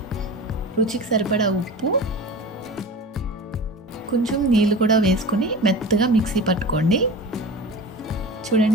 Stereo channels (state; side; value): normal; both; correlation 0.33